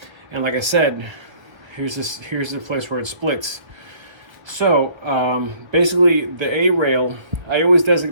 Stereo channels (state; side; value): late; left; 1.5 ms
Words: And like I said, here's the place where it splits. So basically the A rail, I always